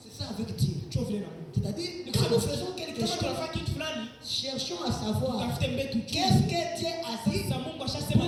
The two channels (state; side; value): identical; both; correlation 1.00